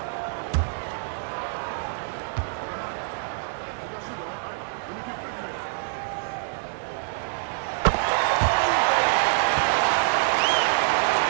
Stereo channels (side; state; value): left; silent; 61 dB below the other